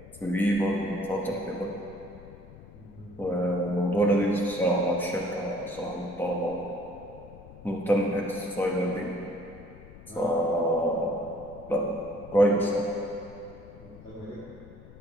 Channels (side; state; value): left; noise; rumble, 18 dB below the sound